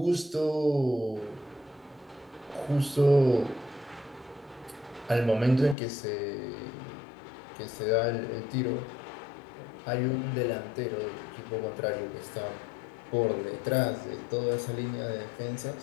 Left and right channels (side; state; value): right; drops out; at 5.8 s